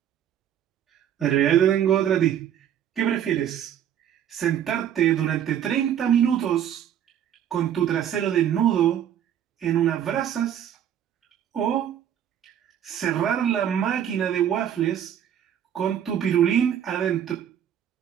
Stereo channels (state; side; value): quieter; left; 9.8 dB